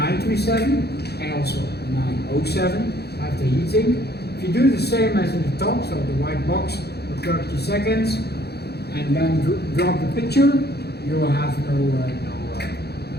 and also 907 have the heating. If you do the same as in the top, so the white box for 30 seconds, and then drop the picture, you will have no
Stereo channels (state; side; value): late; right; 0.47 ms